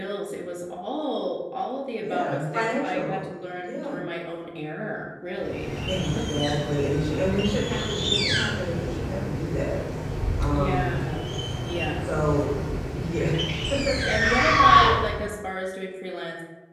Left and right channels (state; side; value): identical; both; correlation 1.00